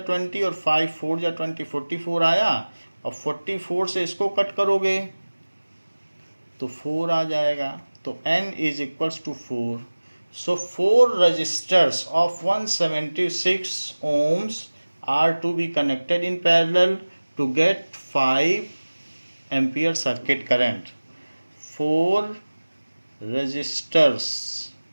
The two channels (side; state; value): both; inverted; correlation -1.00